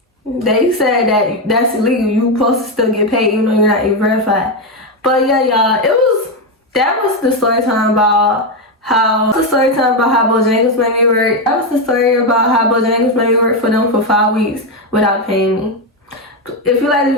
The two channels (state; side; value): normal; both; correlation 0.08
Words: They said that that's illegal. You supposed to still get paid even though you're not verified. But yeah, y'all, that was the story time about how Bojangles made me work. That was the story about how Bojangles made me work for them for 5 weeks without paying me. If you like this